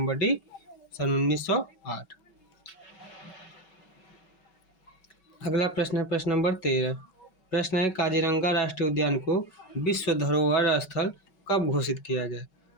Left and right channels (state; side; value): late; right; 5.3 ms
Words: डी, सन 1908। अगला प्रश्न है प्रश्न नंबर 13। प्रश्न है काजीरंगा राष्ट्रीय उद्यान को विश्व धरोहर स्थल कब घोषित किया गया।